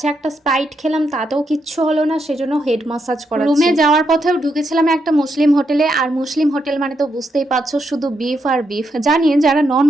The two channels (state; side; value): normal; both; correlation 0.81